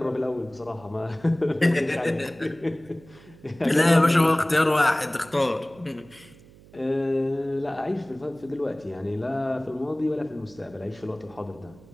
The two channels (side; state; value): right; noise; hum, 23 dB below the sound